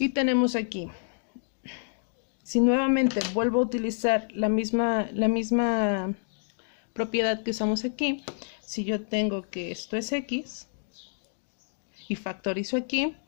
tenemos aquí, si nuevamente vuelvo a utilizar la misma propiedad que usamos aquí, si yo tengo que esto es x y factorizo aquí,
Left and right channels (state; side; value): silent; right; digital silence